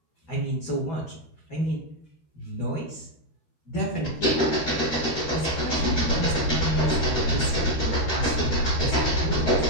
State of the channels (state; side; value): late; right; 13 ms